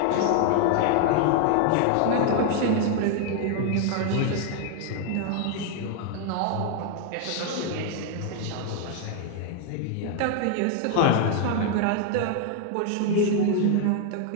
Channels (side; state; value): both; different; correlation 0.00